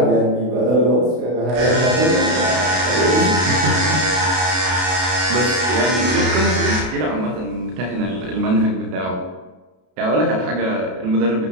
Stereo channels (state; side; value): late; left; 32 ms